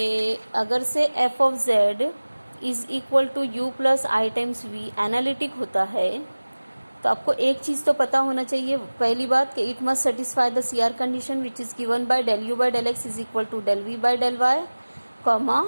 अगर से f of z is equal to u plus i times v analytic होता है तो आपको एक चीज़ तो पता होना चाहिए, पहली बात कि it must satisfy the CR condition which is given by del u by del x is equal to del v by del y, comma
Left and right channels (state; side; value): inverted; both; correlation -1.00